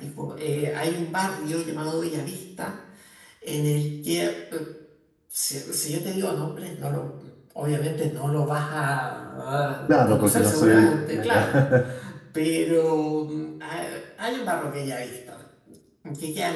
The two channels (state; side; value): identical; both; correlation 1.00